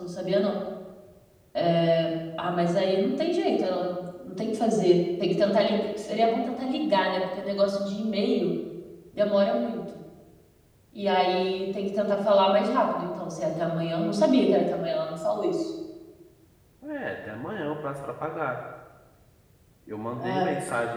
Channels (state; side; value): identical; both; correlation 1.00